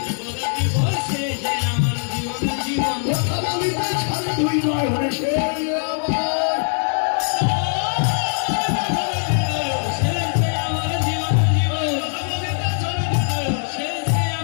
যে আমার জীবনের জীবন, কথা বলিতে ছাড়ে দুই নয় হলে সে আমার সে যে আমার জীবনের জীবন, সে যে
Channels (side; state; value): right; silent; digital silence